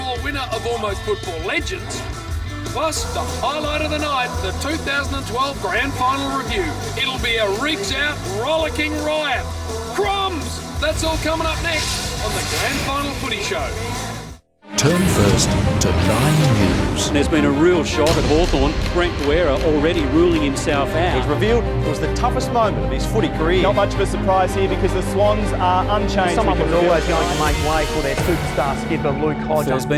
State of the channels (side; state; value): both; identical; correlation 1.00